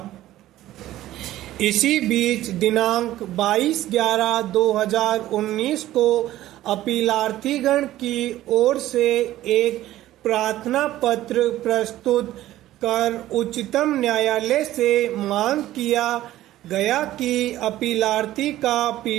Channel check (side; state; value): left; quieter; 14.5 dB